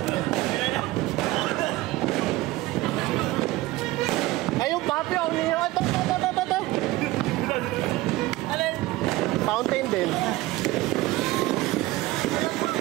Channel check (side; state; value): left; quieter; 18.4 dB